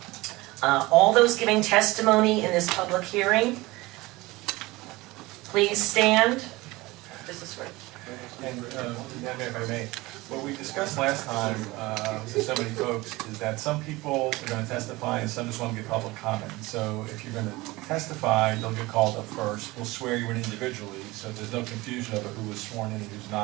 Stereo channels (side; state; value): left; quieter; 21.0 dB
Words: All those giving testimony in this public hearing, please stand. This is for... And, if I may, what we discussed last time with so many folks is that some people are going to testify and some just want to give public comment. So if you're going to testify, you'll get called up first. We'll swear you in individually, so there's no confusion over who was sworn in and who's